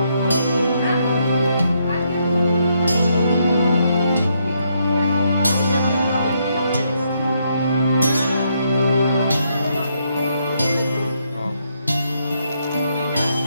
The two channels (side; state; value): both; inverted; correlation -0.76